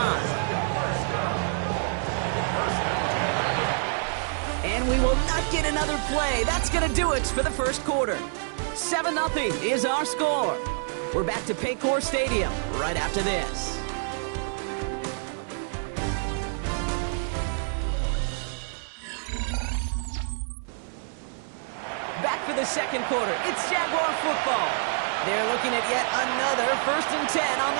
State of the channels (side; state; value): left; silent; 60 dB below the other